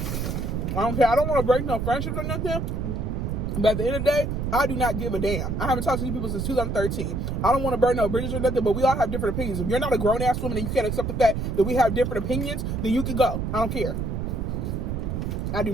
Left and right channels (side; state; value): right; noise; rumble, 2 dB below the sound